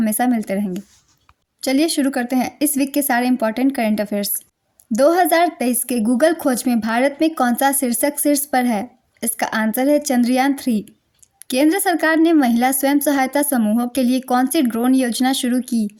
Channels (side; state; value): both; identical; correlation 1.00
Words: मिलते रहेंगे। चलिए शुरू करते हैं इस वीक के सारे इंपॉर्टेंट करंट अफेयर्स। 2023 के गूगल खोज में भारत में कौन सा शीर्षक शीर्ष पर है? इसका आंसर है चंद्रयान 3। केंद्र सरकार ने महिला स्वयं सहायता समूहों के लिए कौन सी ड्रोन योजना शुरू की?